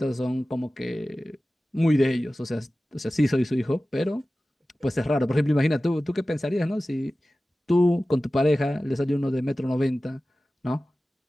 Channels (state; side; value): normal; both; correlation 0.96